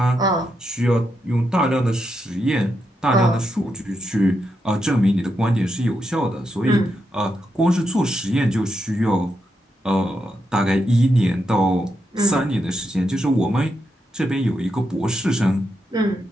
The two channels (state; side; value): normal; both; correlation 0.83